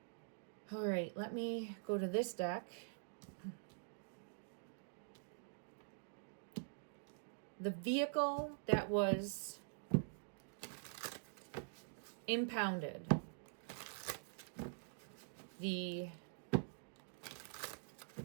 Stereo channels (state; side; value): silent; left; digital silence